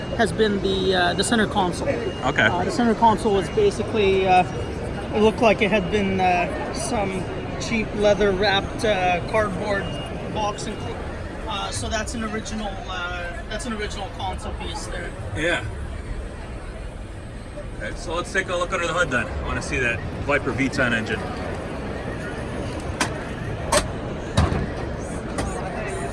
has been the center console. Okay. The center console was basically it looked like it had been some cheap leather wrapped cardboard box included. So that's an original console piece there. Yeah. Okay, so let's take a look under the hood then. I want to see that Viper V10 engine.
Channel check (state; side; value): identical; both; correlation 1.00